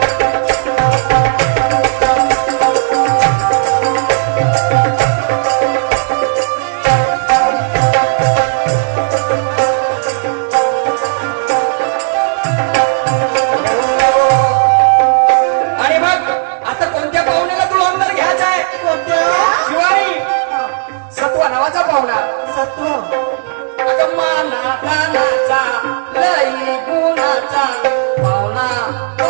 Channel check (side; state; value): left; silent; digital silence